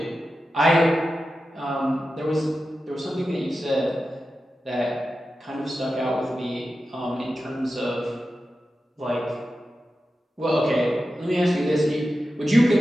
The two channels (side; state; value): both; normal; correlation 0.92